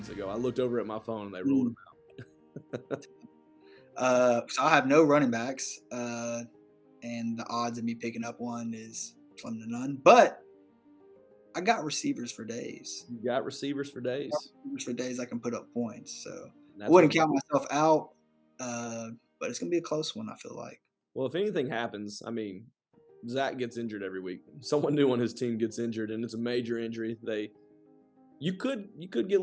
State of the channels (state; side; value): identical; both; correlation 1.00